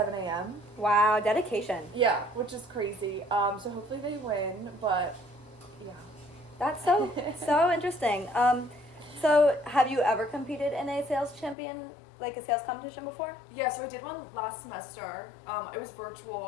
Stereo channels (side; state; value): right; drops out; at 11.6 s